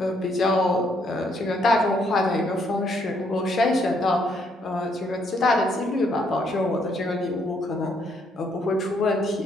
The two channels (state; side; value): normal; both; correlation 0.71